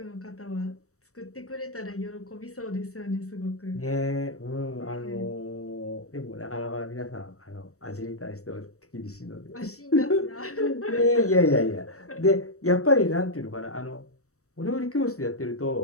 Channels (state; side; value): late; right; 0.65 ms